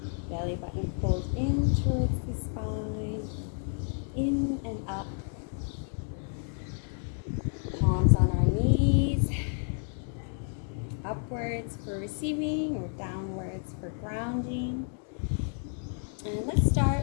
Belly button pulled in towards the spine, in and up. Palms on our knees, upwards for receiving or downwards for grounding. And let's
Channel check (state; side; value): silent; right; 57 dB below the other